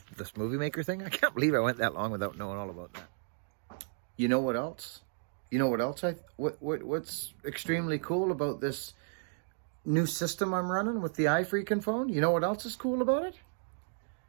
this movie maker thing? I can't believe I went that long without knowing all about that. You know what else? You know what else? What's extremely cool about this new system I'm running with the iFreaking phone? You know what else is cool about it?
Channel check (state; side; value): silent; left; digital silence